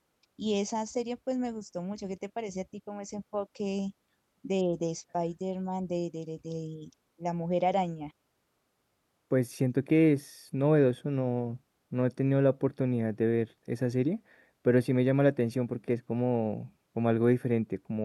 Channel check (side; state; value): both; identical; correlation 1.00